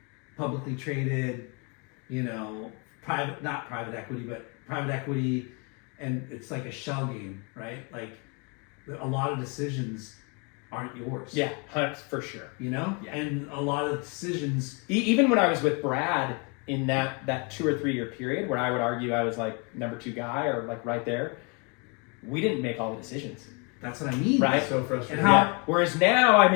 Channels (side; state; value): right; quieter; 33.3 dB